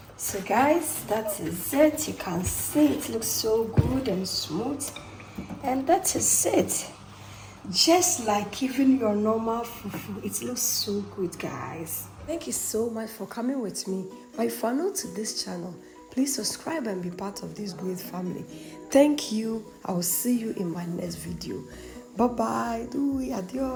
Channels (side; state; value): both; identical; correlation 1.00